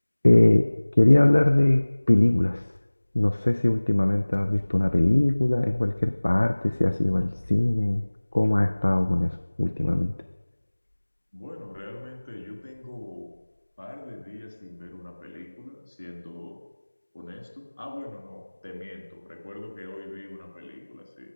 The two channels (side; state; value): both; inverted; correlation -1.00